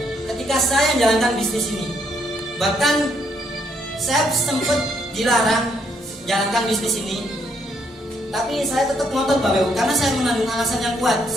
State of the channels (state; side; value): normal; both; correlation 0.72